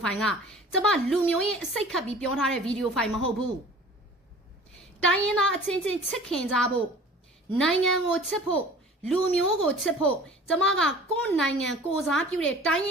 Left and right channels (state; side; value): normal; both; correlation 0.45